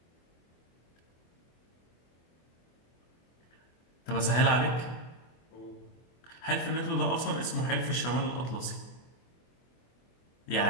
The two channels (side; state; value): right; late; 24 ms